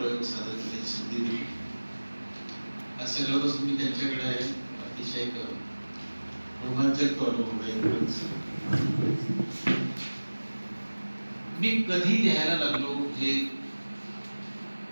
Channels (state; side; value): inverted; both; correlation -1.00